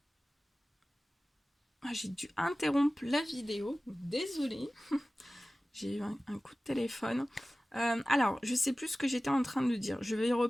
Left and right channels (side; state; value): both; normal; correlation 0.97